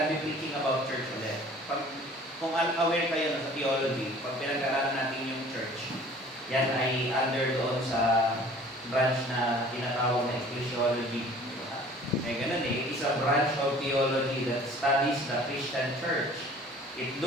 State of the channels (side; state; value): both; normal; correlation 0.49